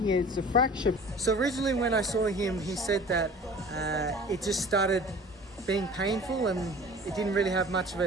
it's a fracture. So originally when I saw him, he said that it just started being painful and it didn't really have much of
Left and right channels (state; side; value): normal; both; correlation 0.44